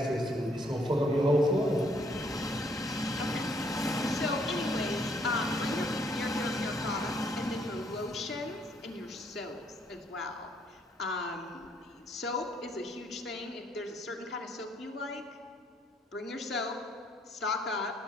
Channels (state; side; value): normal; both; correlation 0.68